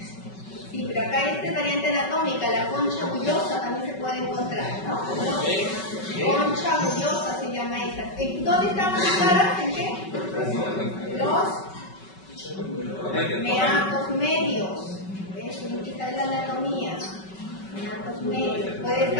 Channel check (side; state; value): right; late; 5.3 ms